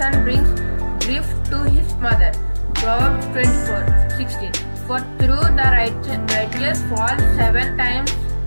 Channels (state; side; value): inverted; both; correlation -1.00